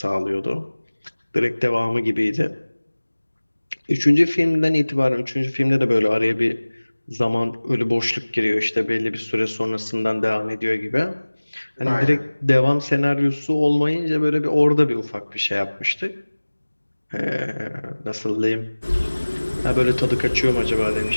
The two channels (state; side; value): inverted; both; correlation -1.00